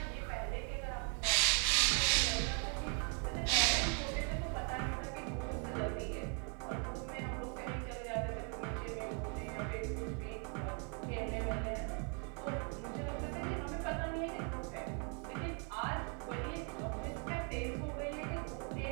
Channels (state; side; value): quieter; left; 37.8 dB